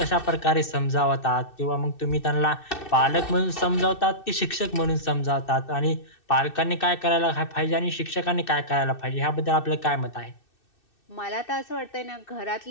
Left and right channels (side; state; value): right; late; 2.6 ms